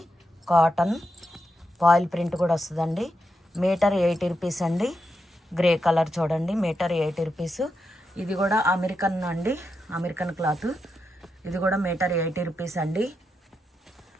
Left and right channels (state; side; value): normal; both; correlation 0.85